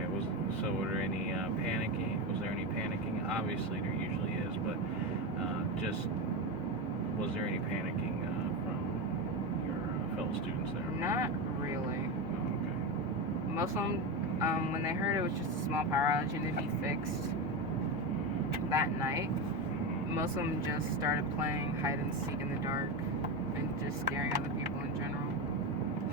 So were there any panicking? Was there any panicking? Obviously, there usually is, but was there any panicking from your fellow students there? Not really. Oh, okay. Most of them, when they heard it was just a small power outage and it'd be fixed that night, most of them just started playing hide and seek in the dark and just scaring other people in general.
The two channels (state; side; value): normal; both; correlation 0.16